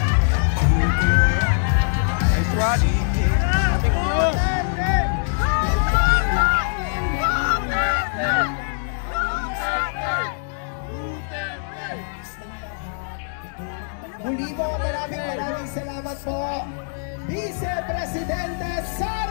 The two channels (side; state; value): right; silent; digital silence